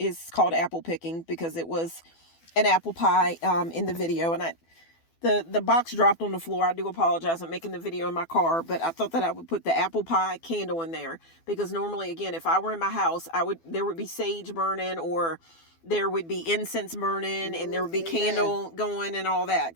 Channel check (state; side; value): late; right; 12 ms